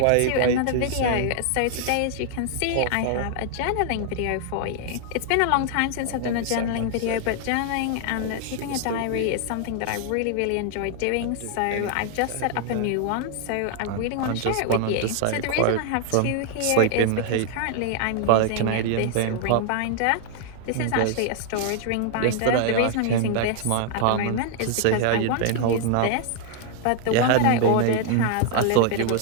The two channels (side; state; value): both; different; correlation 0.00